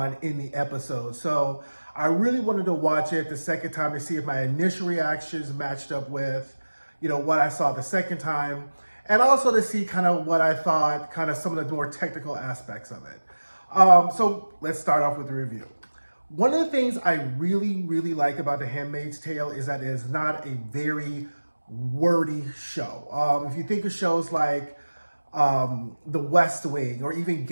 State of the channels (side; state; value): both; inverted; correlation -1.00